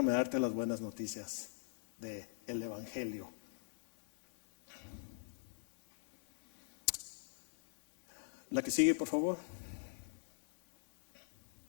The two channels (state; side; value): silent; right; 51 dB below the other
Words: darte las buenas noticias del evangelio. La que sigue, por favor.